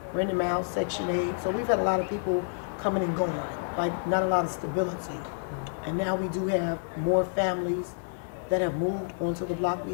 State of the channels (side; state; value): right; silent; digital silence